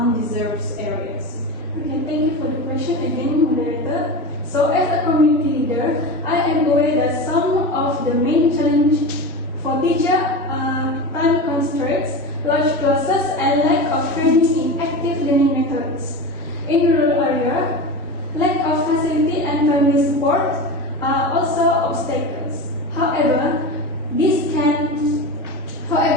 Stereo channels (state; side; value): normal; both; correlation 0.26